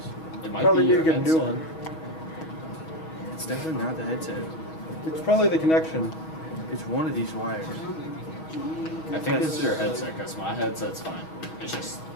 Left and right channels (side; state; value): right; late; 6.3 ms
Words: It might Probably be need your to get a new headset. one. It's definitely not the headset. It's probably the connection. It's one of these wires. I think it's your headset, because my headset's fine. It's just...